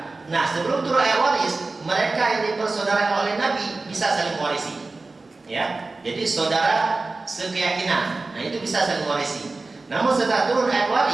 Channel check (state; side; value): quieter; left; 3.5 dB